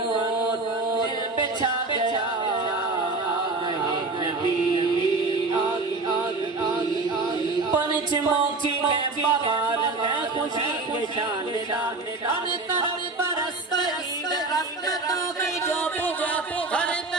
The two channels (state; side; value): quieter; left; 3.5 dB